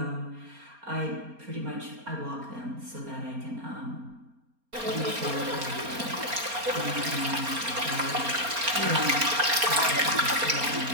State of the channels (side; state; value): left; late; 4.3 ms